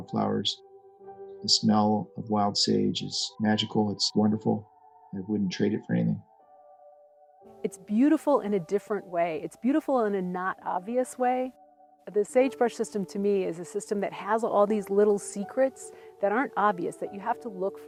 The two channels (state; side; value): identical; both; correlation 1.00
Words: The smell of wild sage is magical. It's wonderful. I wouldn't trade it for anything. It's beautiful in a different way. It's beautiful in a not obvious way. The sagebrush system to me is a system that has all these little secrets that aren't obvious, that you have to look